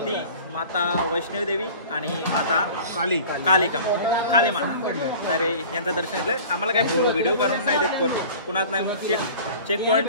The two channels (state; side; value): inverted; both; correlation -0.43